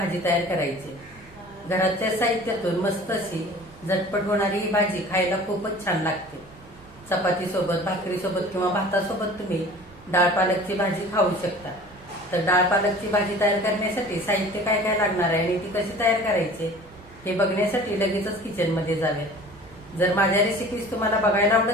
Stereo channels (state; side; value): normal; both; correlation 0.44